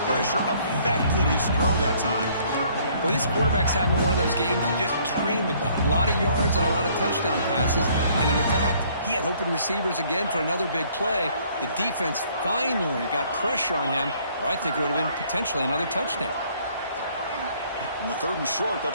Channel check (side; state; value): both; inverted; correlation -0.61